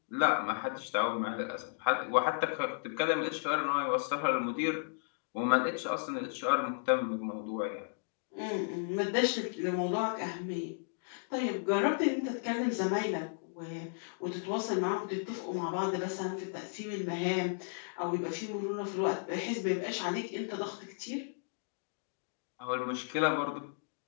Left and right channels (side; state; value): right; silent; digital silence